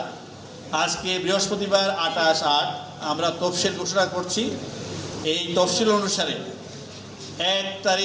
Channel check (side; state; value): both; identical; correlation 1.00